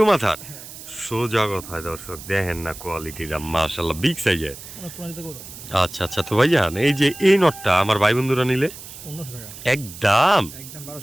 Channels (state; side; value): noise; right; hiss, 14 dB below the sound